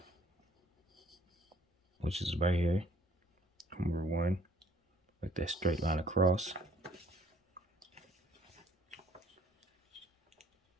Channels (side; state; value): both; normal; correlation 0.60